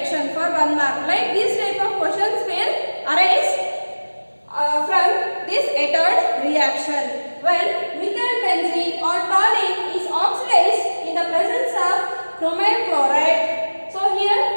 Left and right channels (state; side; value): inverted; both; correlation -1.00